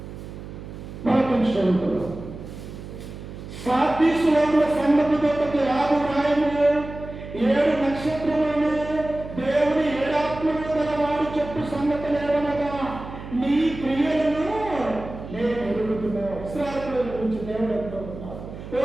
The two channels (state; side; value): noise; right; hum, 12 dB below the sound